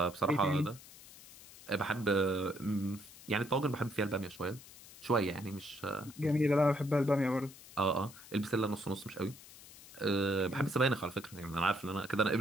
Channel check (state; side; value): noise; left; hiss, 19 dB below the sound